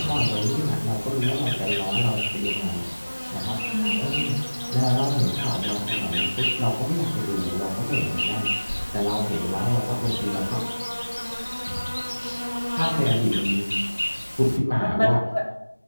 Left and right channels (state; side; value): inverted; both; correlation -1.00